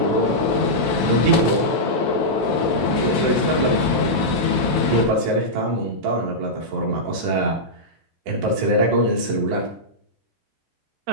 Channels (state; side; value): normal; both; correlation -0.10